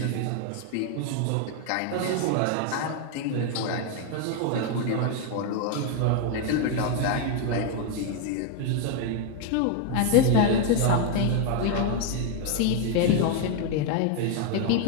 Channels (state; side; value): different; both; correlation 0.00